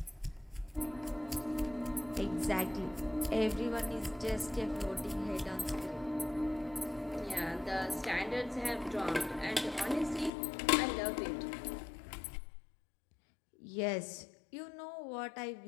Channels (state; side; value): drops out; right; at 10.3 s